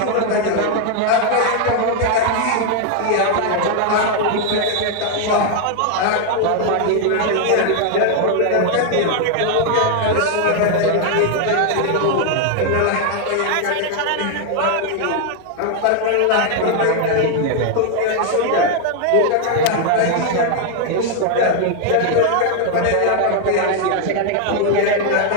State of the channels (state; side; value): different; both; correlation 0.00